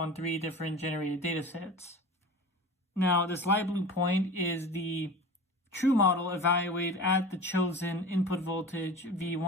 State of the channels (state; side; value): normal; both; correlation 0.35